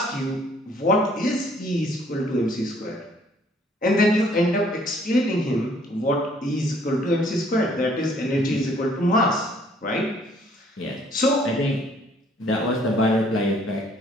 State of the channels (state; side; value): normal; both; correlation 0.61